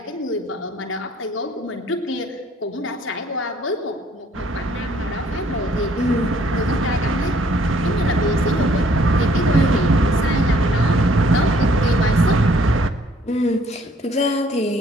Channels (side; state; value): both; normal; correlation 0.62